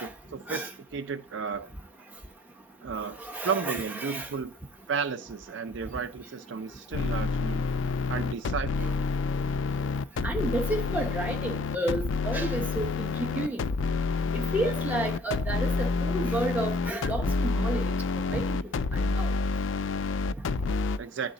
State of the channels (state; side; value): normal; both; correlation 0.57